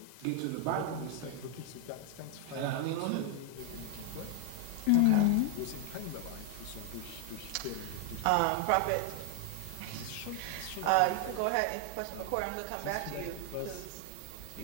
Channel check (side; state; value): both; different; correlation 0.01